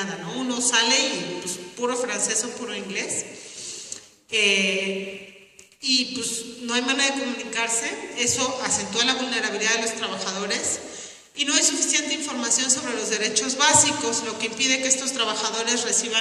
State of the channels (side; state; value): both; identical; correlation 1.00